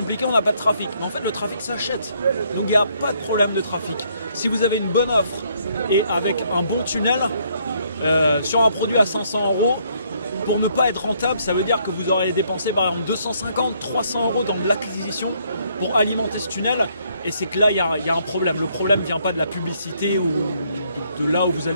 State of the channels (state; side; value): inverted; both; correlation -0.69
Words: on n'a pas de trafic ». Mais en fait, le trafic s'achète. Donc il n'y a pas de problème de trafic. Si vous avez une bonne offre et avec un bon tunnel, sur un produit à 500 euros, pour ne pas être rentable, ça veut dire que vous aurez dépensé par exemple 250, 300 euros dans de l'acquisition pour alimenter ce tunnel. Et c'est que là, il y a un problème. Le problème ne vient pas de la publicité ou de là où vous